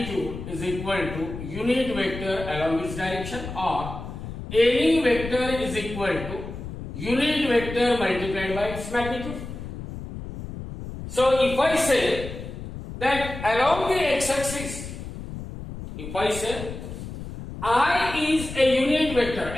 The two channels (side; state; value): left; noise; rumble, 9 dB below the sound